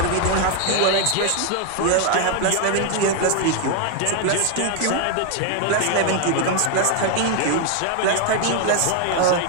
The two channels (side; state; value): both; different; correlation 0.00